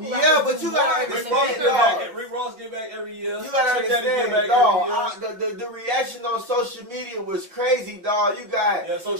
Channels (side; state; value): left; late; 5.6 ms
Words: rappers. Yeah, but you gotta understand, Rick Ross give back every year. You gotta understand, dog. The reaction on social media was crazy, dog. You got